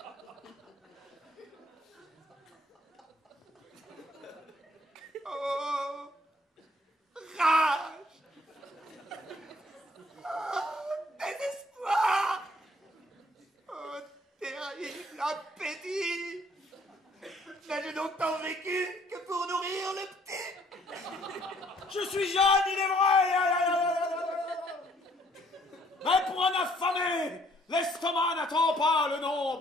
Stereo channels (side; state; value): both; normal; correlation 0.62